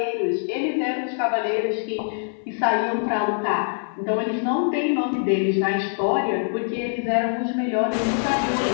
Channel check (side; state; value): right; silent; 63 dB below the other